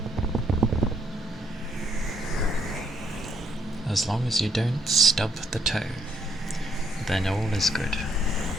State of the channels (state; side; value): normal; both; correlation 0.71